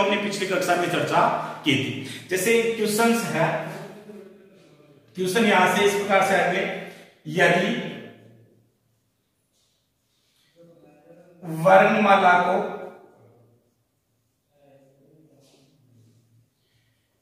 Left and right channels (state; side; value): identical; both; correlation 1.00